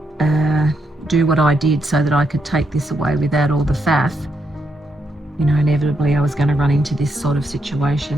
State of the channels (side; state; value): both; normal; correlation 0.80